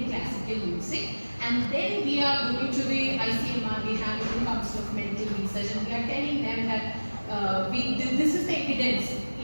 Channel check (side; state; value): both; inverted; correlation -1.00